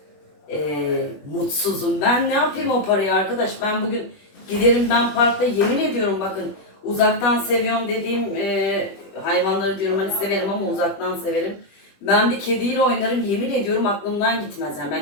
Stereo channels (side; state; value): right; late; 21 ms